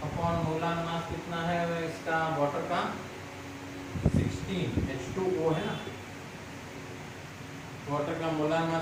अपॉन मोलार मास कितना है इसका वाटर का 16 H2O है ना. वाटर का मोलार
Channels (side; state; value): both; identical; correlation 1.00